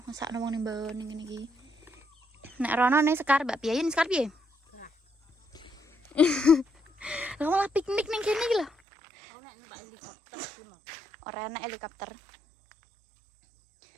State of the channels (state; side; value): drops out; left; at 8.7 s